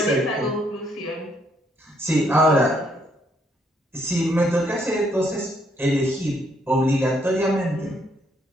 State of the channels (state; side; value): normal; both; correlation 0.71